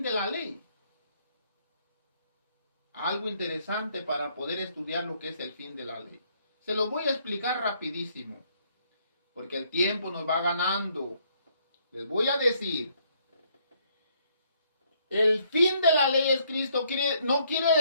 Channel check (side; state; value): both; inverted; correlation -0.68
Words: de la ley? Algo interesante para poder estudiar lo que es el fin de la ley. Se lo voy a explicar rapidísimo, porque el tiempo nos va ganando. Les voy a decir, el fin de la ley es Cristo. No quiere